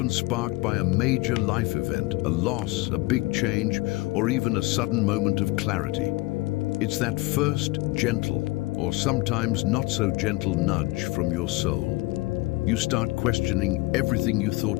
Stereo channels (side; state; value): right; quieter; 21.8 dB